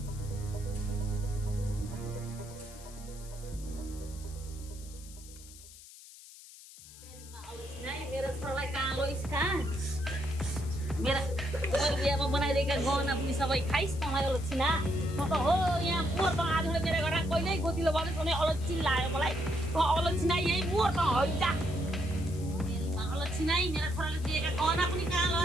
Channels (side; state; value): left; noise; hiss, 18 dB below the sound